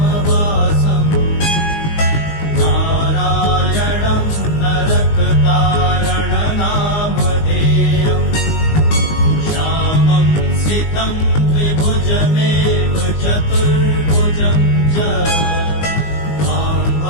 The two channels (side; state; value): right; late; 19 ms